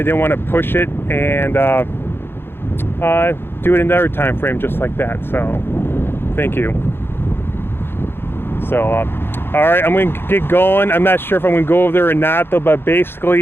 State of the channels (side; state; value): right; late; 0.11 ms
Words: didn't want to push it and do it another time frame just like that. So thank you. So all right, I'm gonna get going. I'm not sure if I'm gonna go over there or not though, but